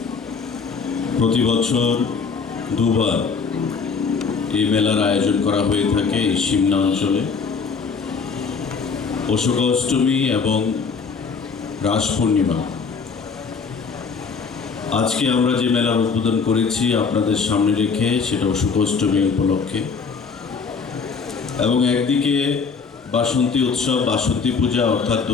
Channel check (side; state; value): right; quieter; 5.3 dB